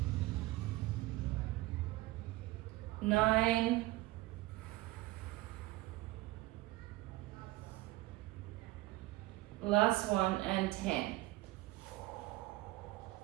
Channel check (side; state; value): left; quieter; 18.7 dB